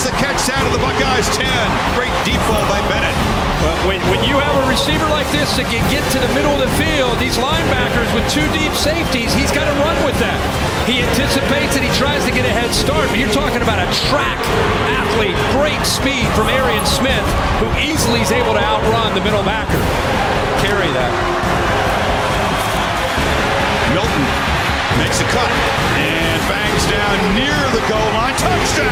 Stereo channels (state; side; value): identical; both; correlation 1.00